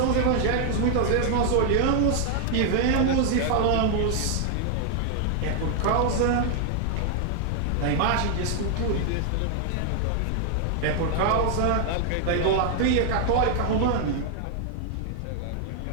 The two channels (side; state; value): both; different; correlation 0.00